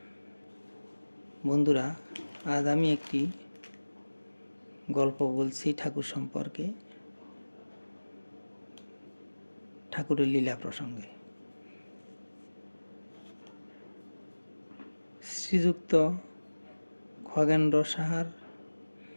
বন্ধুরা, আজ আমি একটি গল্প বলছি ঠাকুর সম্পর্কে, ঠাকুরের লীলা প্রসঙ্গে। শ্রীযুক্ত খগেন্দ্র সাহার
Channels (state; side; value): inverted; both; correlation -1.00